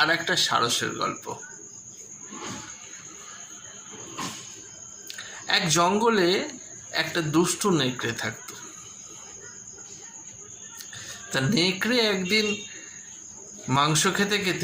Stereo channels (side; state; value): both; identical; correlation 1.00